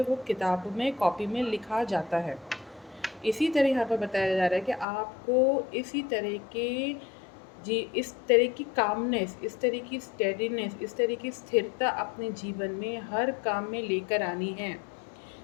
वो किताब में, कॉपी में लिखा जाता है। इसी तरह यहाँ पर बताया जा रहा है कि आपको इसी तरह के इस तरह की कामनेस, इस तरह की स्टेडीनेस, इस तरह की स्थिरता अपने जीवन में हर काम में लेकर आनी है।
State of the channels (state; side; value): drops out; right; at 4.9 s